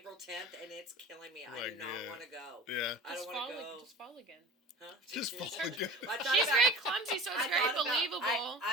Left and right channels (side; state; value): both; normal; correlation 0.39